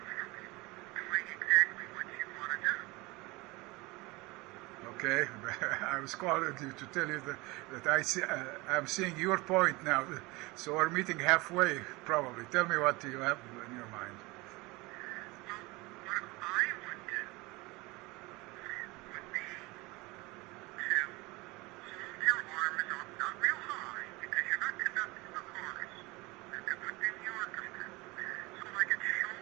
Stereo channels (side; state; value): left; quieter; 23.5 dB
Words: doing exactly what you want to do. Okay. I was calling you to tell you that I'm seeing your point now. So we're meeting halfway, probably. Tell me what you have in your mind. Well, what I would do would be to hold your arms up, not real high, because you're not conducting the chorus. You're conducting the orchestra. So like at